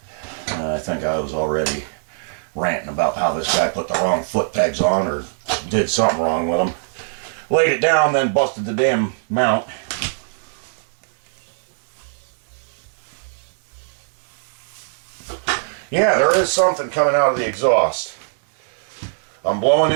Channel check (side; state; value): left; silent; 65 dB below the other